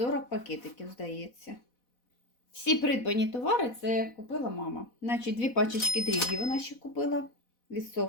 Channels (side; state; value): right; late; 4.1 ms